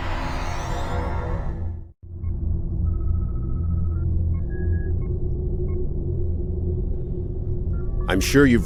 I'm sure you've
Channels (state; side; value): identical; both; correlation 1.00